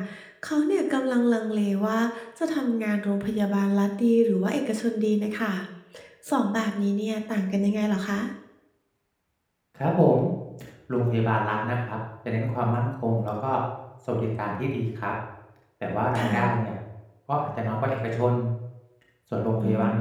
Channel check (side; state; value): both; identical; correlation 1.00